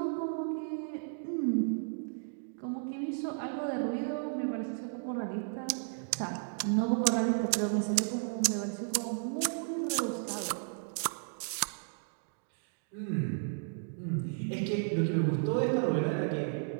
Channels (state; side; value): silent; left; digital silence